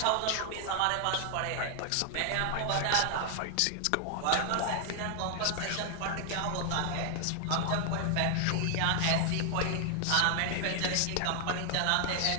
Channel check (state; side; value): different; both; correlation 0.00